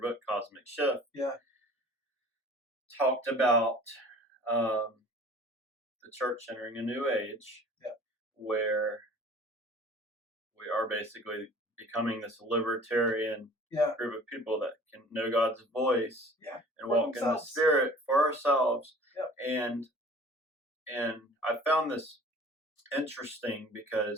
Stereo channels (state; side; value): normal; both; correlation 0.47